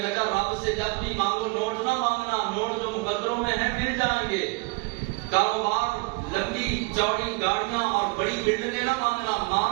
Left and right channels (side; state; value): left; quieter; 27.1 dB